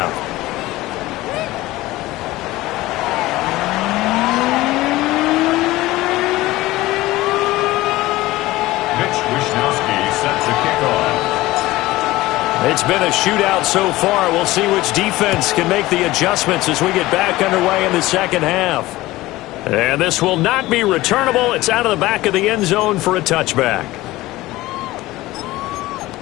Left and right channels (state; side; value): quieter; right; 18.1 dB